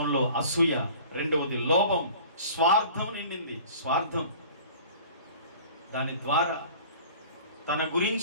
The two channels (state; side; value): inverted; both; correlation -0.45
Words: అసూయ, రెండవది లోభం, స్వార్థం నిండింది. స్వార్థం, దాని ద్వారా తన